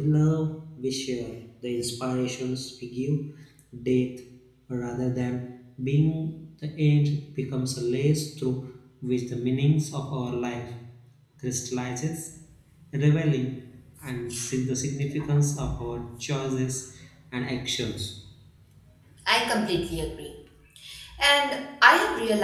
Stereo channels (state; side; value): identical; both; correlation 1.00